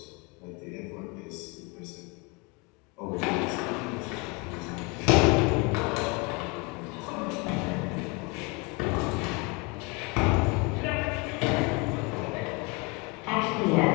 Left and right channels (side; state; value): right; quieter; 27.7 dB